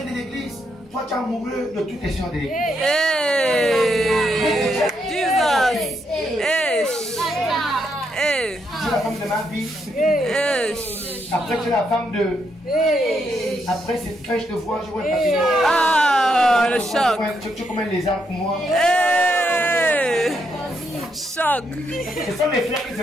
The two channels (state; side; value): normal; both; correlation 0.78